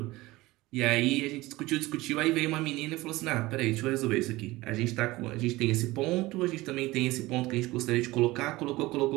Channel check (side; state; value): left; quieter; 19.6 dB